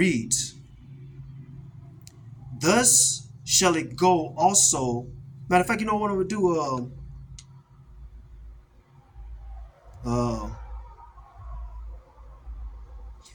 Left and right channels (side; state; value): both; identical; correlation 1.00